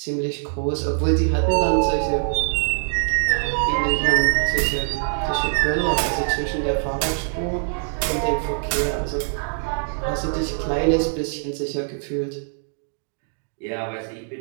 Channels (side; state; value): left; silent; digital silence